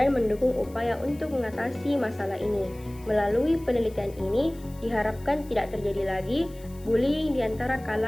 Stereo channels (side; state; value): left; noise; hiss, 24 dB below the sound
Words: mendukung upaya untuk mengatasi masalah ini. Melalui penelitian ini, diharapkan tidak terjadi lagi bullying di antara